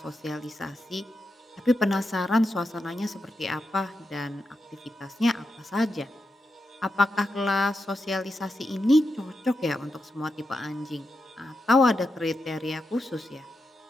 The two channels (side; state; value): both; normal; correlation 0.87